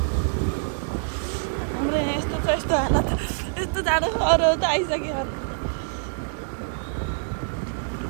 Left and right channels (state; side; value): silent; left; digital silence